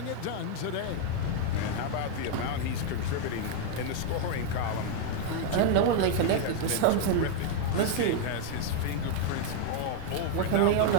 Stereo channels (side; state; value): both; different; correlation 0.00